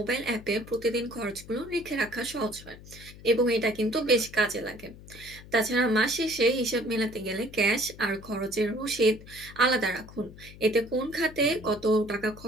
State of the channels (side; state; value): left; noise; hum, 18 dB below the sound